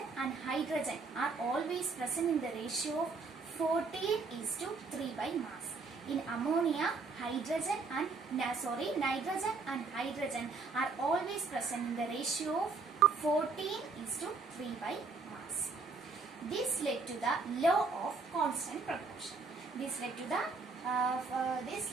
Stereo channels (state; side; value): quieter; left; 4.3 dB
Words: and hydrogen are always present in the ratio of 14:3 by mass. In ammonia, nitrogen and hydrogen are always present in the ratio of 14:3 by mass. This led to the law of constant proportion. This led to